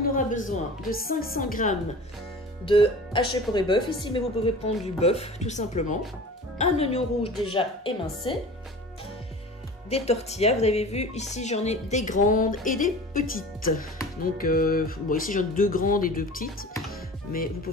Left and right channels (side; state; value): both; normal; correlation 0.39